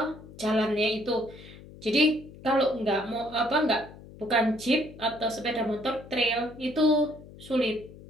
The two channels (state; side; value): noise; left; hum, 18 dB below the sound